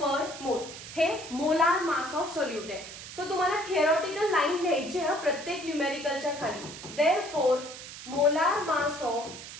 mole हे मोलार मास ऑफ सोल्यूट आहे. सो तुम्हाला थिअरॉटिकल लाईन लिहायची आहे प्रत्येक न्यूमेरिकलच्या खाली. Therefore molar mass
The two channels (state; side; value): noise; right; hiss, 12 dB below the sound